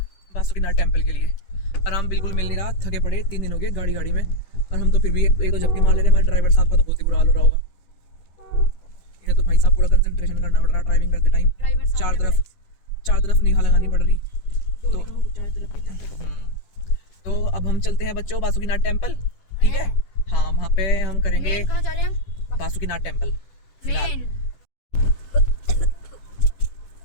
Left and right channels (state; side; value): late; right; 10 ms